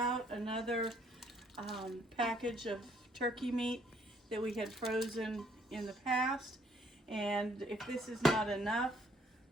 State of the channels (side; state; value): both; normal; correlation 0.65